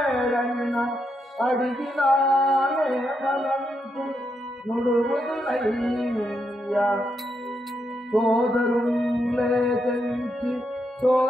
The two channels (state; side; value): normal; both; correlation 0.81